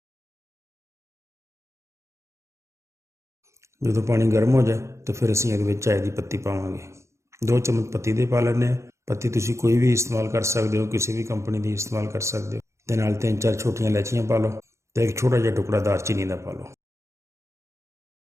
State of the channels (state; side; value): late; left; 0.14 ms